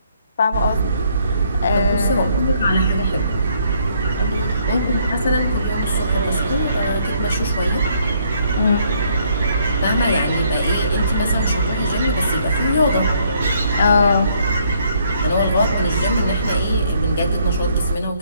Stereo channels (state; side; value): inverted; both; correlation -0.68